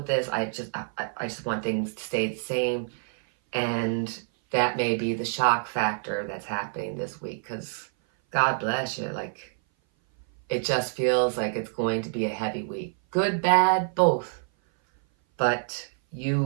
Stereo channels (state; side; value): silent; left; 57 dB below the other